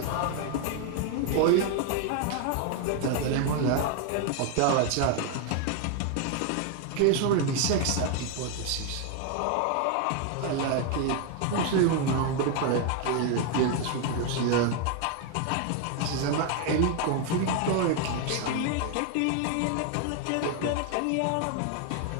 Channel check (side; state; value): both; different; correlation 0.01